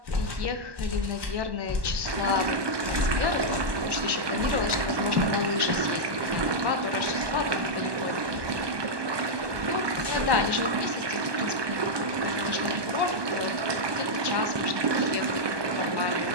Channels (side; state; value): left; late; 1.2 ms